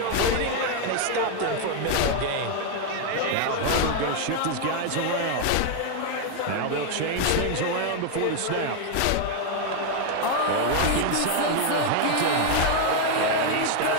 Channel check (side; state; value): both; different; correlation 0.01